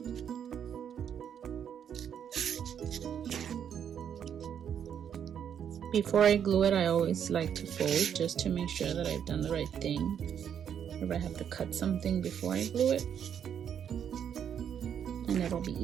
Before I glue it, I always like to fold just to make sure that I've done the right thing. If I have to cut something before I glue it, and it'll be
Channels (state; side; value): quieter; left; 8.6 dB